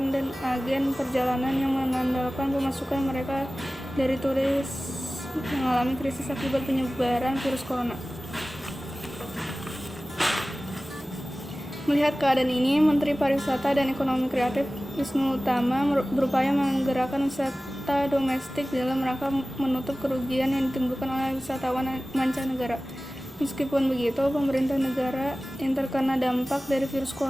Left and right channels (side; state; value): both; normal; correlation 0.97